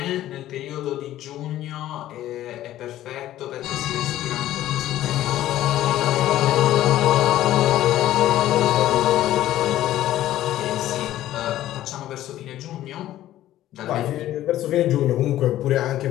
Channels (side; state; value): right; quieter; 13.6 dB